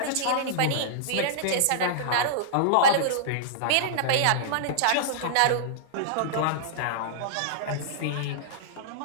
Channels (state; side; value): different; both; correlation -0.02